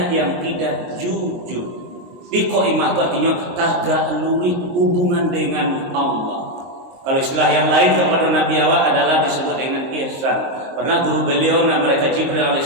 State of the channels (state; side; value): late; left; 23 ms